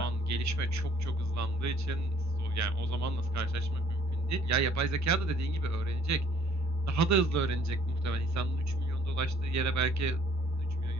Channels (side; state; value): both; normal; correlation 0.59